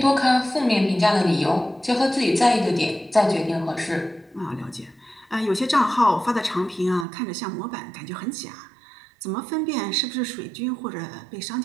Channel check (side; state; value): left; drops out; at 7.1 s